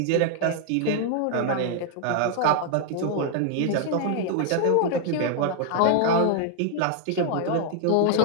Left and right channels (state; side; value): different; both; correlation 0.00